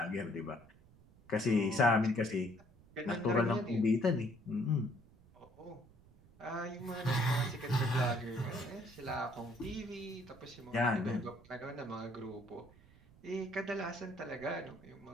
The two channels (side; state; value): right; noise; rumble, 25 dB below the sound